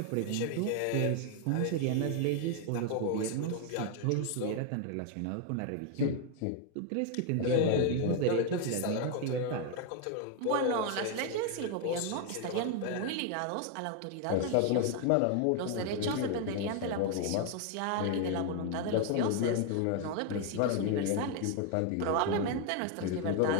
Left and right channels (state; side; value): different; both; correlation 0.00